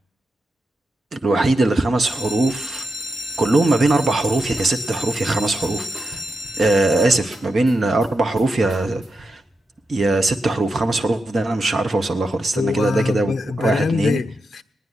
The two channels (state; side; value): normal; both; correlation 0.87